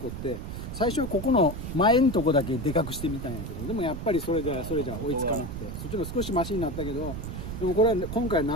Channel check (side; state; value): right; noise; rumble, 7 dB below the sound